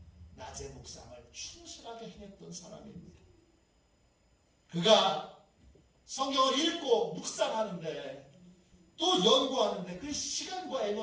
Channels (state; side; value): identical; both; correlation 1.00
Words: 낮의 묵상을 충실하게 행했던 사람입니다. 그가 성경을 읽고 묵상하는데 또 연구하는데 그 시간과